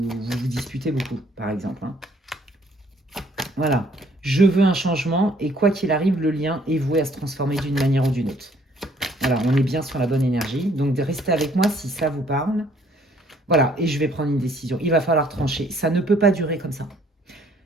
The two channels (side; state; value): both; normal; correlation 0.62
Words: disputez beaucoup, par exemple. Voilà. Je veux un changement, et quoi qu'il arrive, le lien est voué à se transformer d'une manière ou d'une autre. Voilà, on est bien sur la bonne énergie. Donc, restez avec moi si ça vous parle. Voilà, et je vais prendre une décision. Il va falloir trancher. Ça ne peut pas durer comme ça.